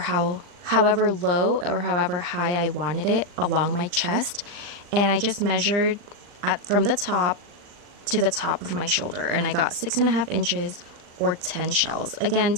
low or however high I wanted it along my chest, and I just measured from the top to the top of my shoulder, and I got 6.5 inches or 10 shells. Again,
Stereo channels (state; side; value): late; left; 39 ms